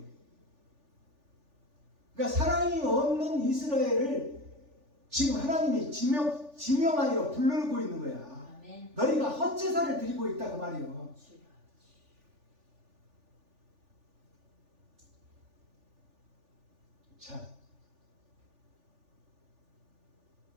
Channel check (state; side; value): late; left; 3.4 ms